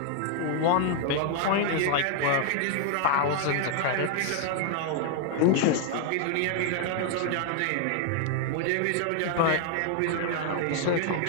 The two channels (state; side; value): different; both; correlation 0.00